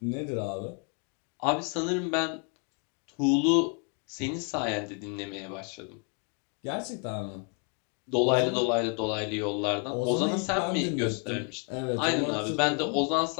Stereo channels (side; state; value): right; quieter; 37.6 dB